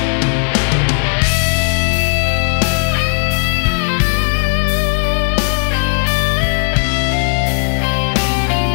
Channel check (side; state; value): right; silent; 70 dB below the other